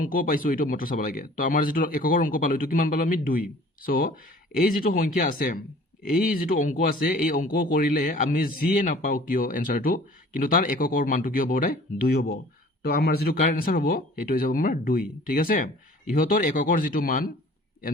পাইছোঁ এইটো মাত্ৰ চাব লাগে। তো আমাৰ যিটো একৰ অংক পালোঁ এইটো কিমান পালোঁ আমি 2। চ' এই যিটো সংখ্যা আছে, এই যিটো অংক আছে, এই অংক কৰিলে আমি যিয়ে নাপাওঁ কিয় এনচাৰটো, কিন্তু তাৰ একৰ মানটো কি হ'ব সদায় 2 হ'ব। তো আমাৰ যিটো কাৰেক্ট এনচাৰ হ'ব সেইটো হৈ যাব আমাৰ 2, ঠিক আছে। ইহঁতৰ একৰ যিটো মান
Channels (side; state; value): both; normal; correlation 0.49